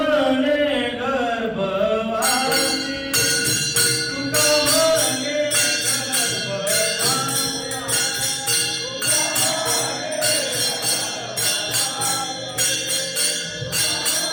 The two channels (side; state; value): both; identical; correlation 1.00